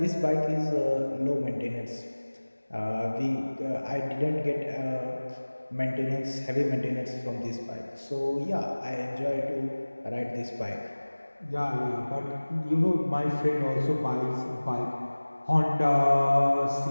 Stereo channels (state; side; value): inverted; both; correlation -1.00